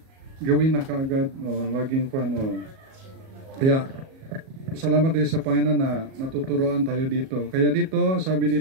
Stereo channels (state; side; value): late; left; 37 ms